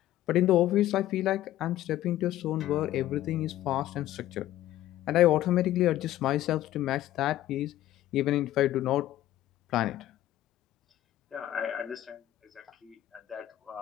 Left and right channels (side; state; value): right; quieter; 13.8 dB